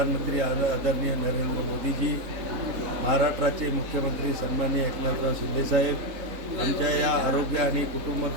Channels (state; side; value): late; left; 3.7 ms